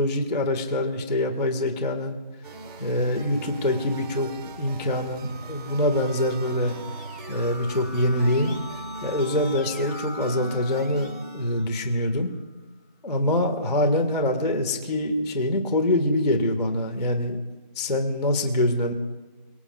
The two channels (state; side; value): inverted; both; correlation -0.44